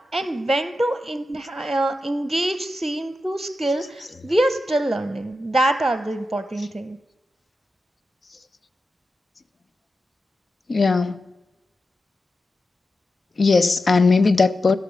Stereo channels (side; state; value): both; normal; correlation 0.91